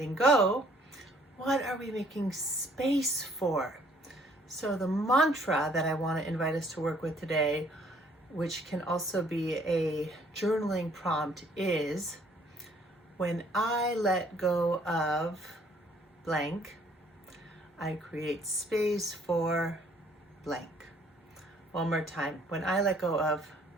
go, what are we making space for? So the mantra that I want to invite us to work with today, which can also be a journaling prompt, is when I let go of blank, I create space for blank. One more time. When I let go of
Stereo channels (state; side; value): normal; both; correlation 0.62